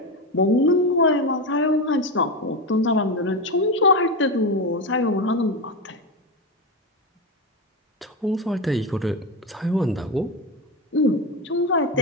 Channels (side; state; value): both; normal; correlation 0.16